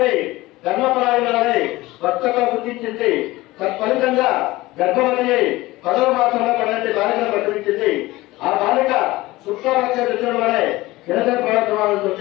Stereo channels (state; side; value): quieter; right; 19.1 dB